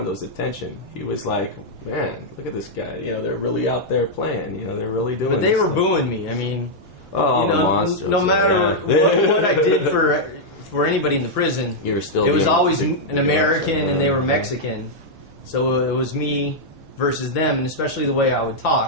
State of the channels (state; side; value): normal; both; correlation -0.05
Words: attention. He was like, man, look at this guy. You know, they're really out there playing. You know, they're really doing. But they were stuff. Booing me. I mean, you know, the monsters, no matter what I did for anybody in the prison, you were still. It was always an American, and they were Mexican. So it was me versus them, and especially the way I would